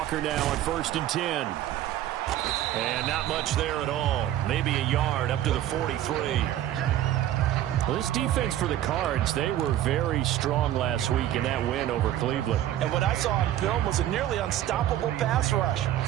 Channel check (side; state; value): left; quieter; 12.5 dB